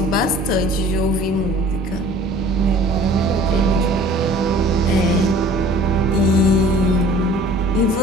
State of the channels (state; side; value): normal; both; correlation 0.49